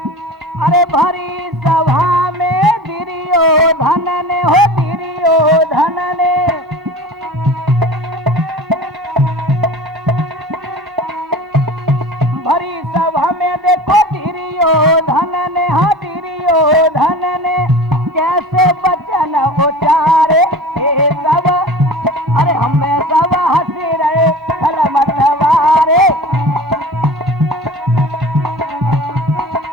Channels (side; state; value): both; normal; correlation 0.36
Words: अरे भरी सभा में दुर्योधन ने हो, दुर्योधन ने भरी सभा में देखो दुर्योधन ने, हाँ दुर्योधन ने कैसे वचन उचारे। ये सब अरे हमें सब हंसी रहे खल मतवारे।